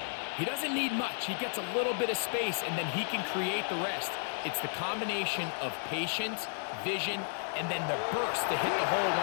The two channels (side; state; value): right; silent; digital silence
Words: he doesn't need much. He gets a little bit of space, and then he can create the rest. It's the combination of patience, vision, and then the burst to hit the hole